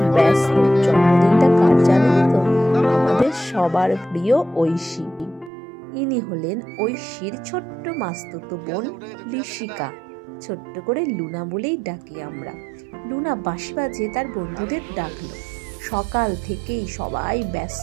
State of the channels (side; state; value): left; drops out; at 5.5 s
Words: ব্যস্ত। জন্মদিনটা কার জানেন তো? আমাদের সবার প্রিয় ঐশী। ইনি হলেন ঐশীর ছোট্ট মাস্তুতো বোন ঋষিকা। ছোট্ট করে লুনা বলেই ডাকি আমরা। লুনা বাঁশি বাজিয়ে তার বন্ধুদের ডাকলো। সকাল থেকেই সবাই